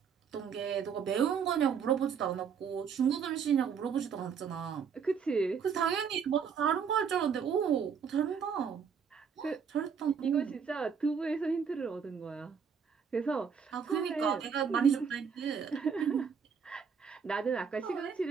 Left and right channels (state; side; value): quieter; left; 6.7 dB